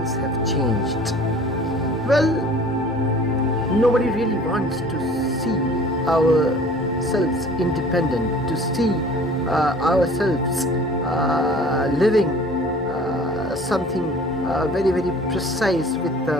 have changed. Well, nobody really wants to see ourselves independent, to see ourselves living something very, very precise with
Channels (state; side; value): normal; both; correlation 0.47